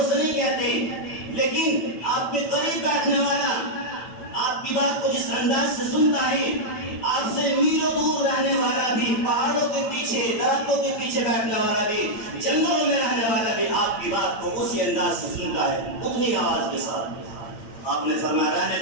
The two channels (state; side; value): late; right; 8.8 ms